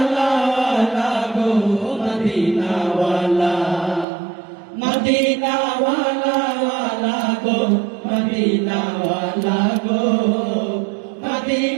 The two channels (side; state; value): left; drops out; at 4.0 s